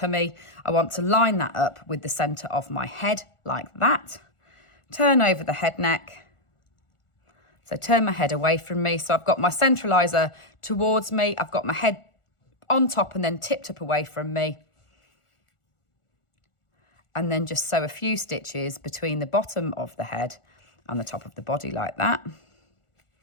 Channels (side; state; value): right; late; 1.4 ms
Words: I want to line that up with the centre of my head like that. Turn over the head neck. So turn my head away from me. So I've got my centraliser towards me. I've got my head on top and then tipped up away from me. And then just sew a few stitches between the bottom of the head and the top of the body like that.